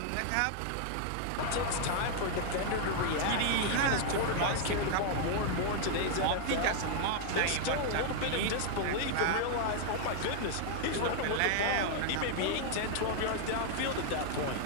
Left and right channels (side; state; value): both; different; correlation 0.00